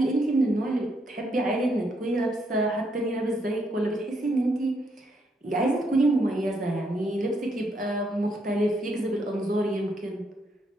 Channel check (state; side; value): normal; both; correlation 0.75